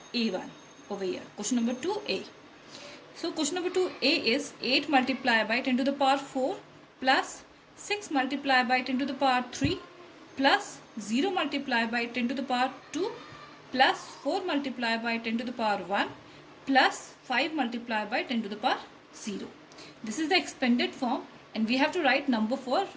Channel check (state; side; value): identical; both; correlation 1.00